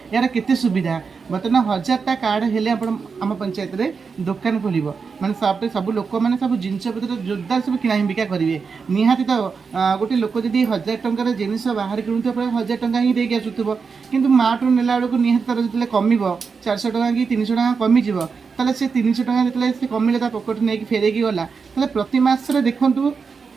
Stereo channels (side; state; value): left; quieter; 5.3 dB